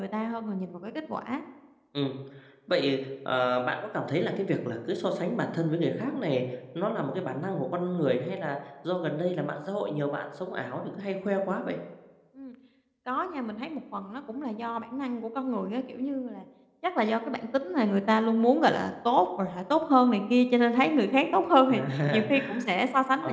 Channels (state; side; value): identical; both; correlation 1.00